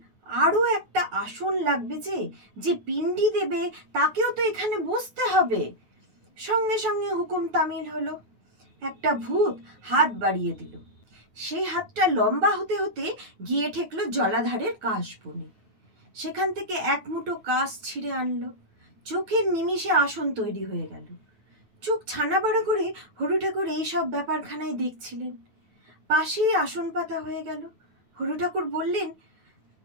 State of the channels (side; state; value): left; late; 9.2 ms